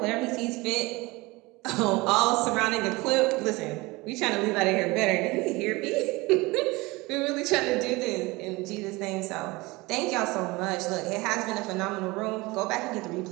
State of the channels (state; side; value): quieter; left; 22.8 dB